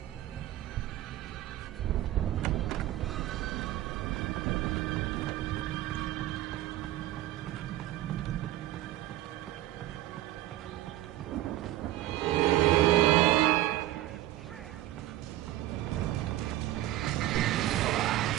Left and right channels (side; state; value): left; quieter; 14.7 dB